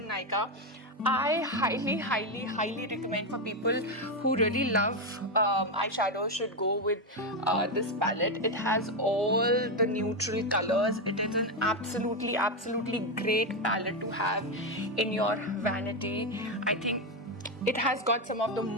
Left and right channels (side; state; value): both; normal; correlation 0.08